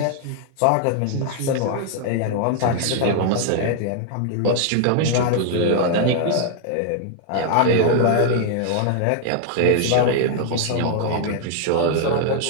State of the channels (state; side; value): different; both; correlation 0.00